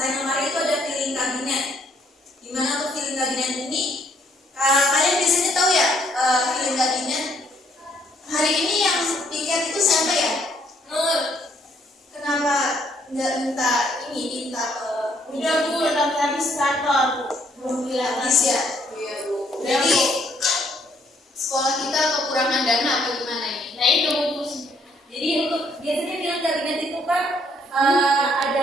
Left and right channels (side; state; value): both; normal; correlation 0.68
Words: lemari itu ada piling kabinet. Gimana untuk piling kabinet ini? Kalian biasanya tahu ya, piling kabinet. Hari ini yang piket itu siapa ya? Nur. Kenapa nggak minta Udah Bu, tapi habis kantor Bu. belum habis ya? Iya Bu. Jadi sekolah kita kekurangan dana apa gimana ini? Nah itu Bu. Jadi untuk biasanya piling kabinet itu kan ada